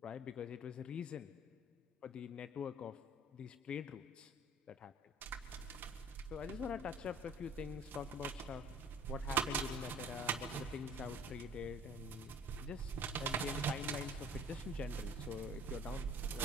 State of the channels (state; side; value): normal; both; correlation 0.50